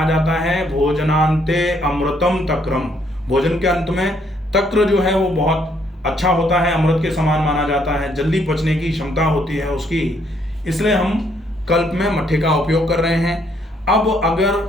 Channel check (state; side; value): normal; both; correlation 0.70